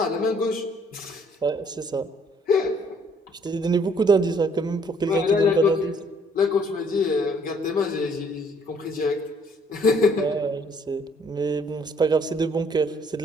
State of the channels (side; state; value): both; normal; correlation 0.63